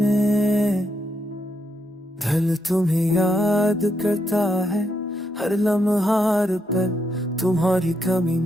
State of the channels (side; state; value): both; normal; correlation 0.80